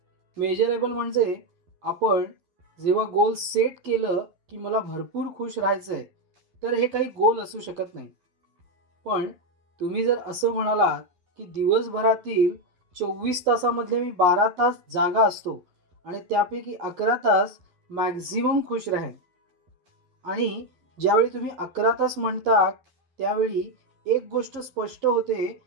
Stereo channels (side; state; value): left; late; 11 ms